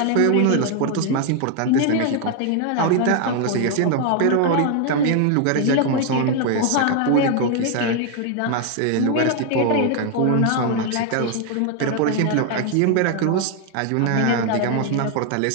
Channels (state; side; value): different; both; correlation 0.00